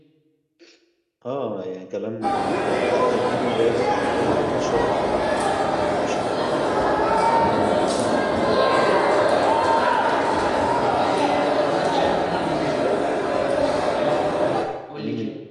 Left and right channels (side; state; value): both; identical; correlation 1.00